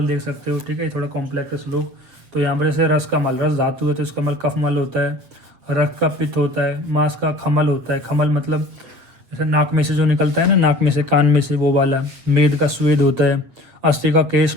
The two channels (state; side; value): late; left; 8.1 ms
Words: देख सकते हो, ठीक है। थोड़ा कॉम्प्लेक्स श्लोक। तो यहाँ पर जैसे रस का मल, रस धातु है तो इसका मल कफ मल होता है। रक्त का पित्त होता है, मांस का खमल होता है, खमल मतलब जैसे नाक में से जो निकलता है ना, नाक में से कान में से वो वाला। मेद का स्वेद होता है, अस्थि का केश